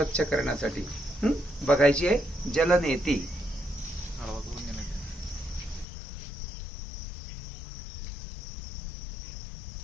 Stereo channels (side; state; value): right; drops out; at 5.9 s